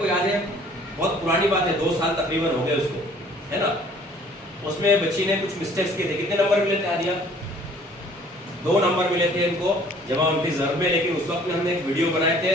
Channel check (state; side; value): normal; both; correlation 0.55